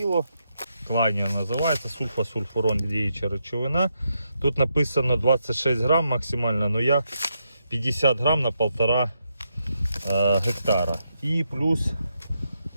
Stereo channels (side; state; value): both; inverted; correlation -0.82